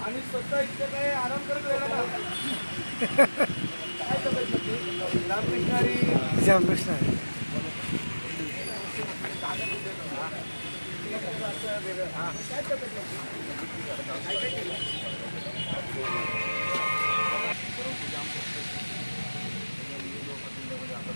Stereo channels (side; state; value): both; inverted; correlation -1.00